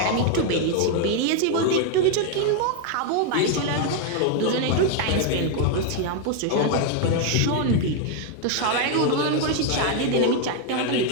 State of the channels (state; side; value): different; both; correlation 0.01